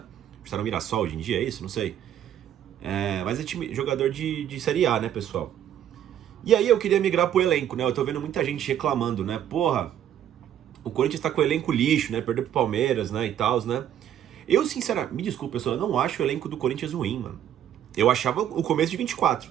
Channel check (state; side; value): quieter; left; 10.4 dB